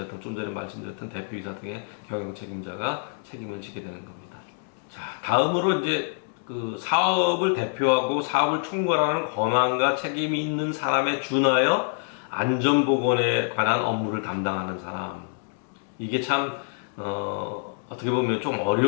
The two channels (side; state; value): right; silent; digital silence